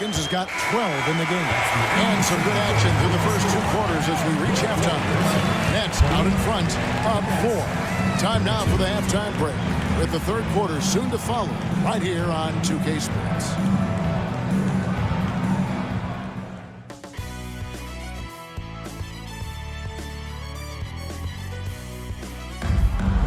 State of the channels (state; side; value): identical; both; correlation 1.00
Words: has got 12 in the game. And some good action through the first 2 quarters as we reach halftime. Nets out in front, up 4. Time now for the halftime break, with the third quarter soon to follow, right here on 2K Sports.